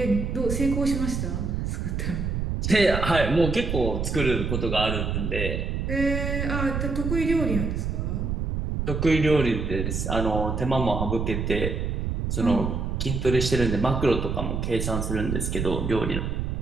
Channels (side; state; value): right; noise; rumble, 2 dB below the sound